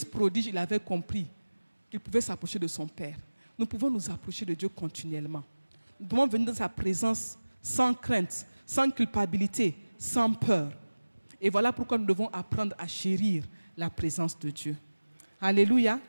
prodige, il avait compris qu'il pouvait s'approcher de son Père. Nous pouvons nous approcher de Dieu continuellement. Nous pouvons venir dans sa présence sans crainte, sans culpabilité, sans peur. Et voilà pourquoi nous devons apprendre à chérir la présence de Dieu. Alléluia.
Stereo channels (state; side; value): inverted; both; correlation -1.00